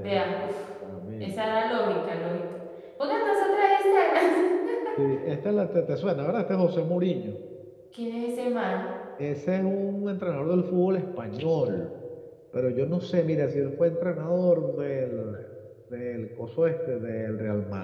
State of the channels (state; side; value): identical; both; correlation 1.00